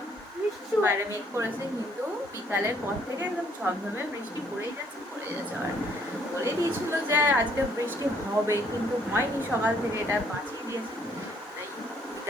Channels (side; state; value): both; normal; correlation 0.65